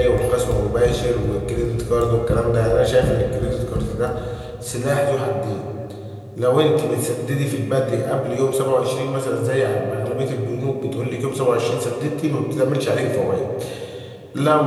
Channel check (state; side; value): identical; both; correlation 1.00